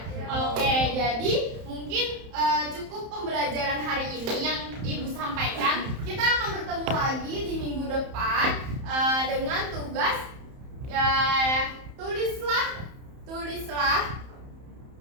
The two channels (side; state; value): left; late; 31 ms